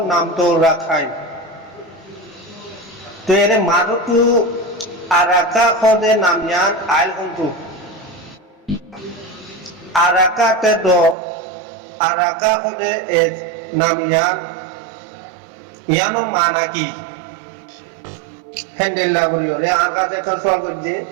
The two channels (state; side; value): drops out; left; at 11.2 s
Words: নাম তো রাখাই তো এর মারুতু আরাকা খদে নামিয়ান আইল হন্তু আরাকা তে দো আরাকা খদে এ নামিয়ান ইয়ানো মানা কি হ্যান্ডেল করিওরে আর কাছে কোন সওয়াল করছে